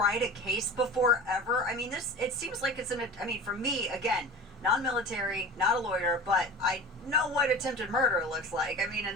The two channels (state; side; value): normal; both; correlation 0.35